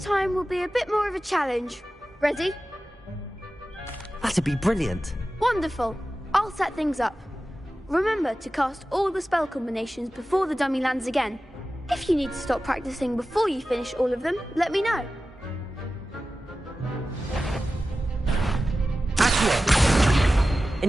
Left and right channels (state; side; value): normal; both; correlation 0.94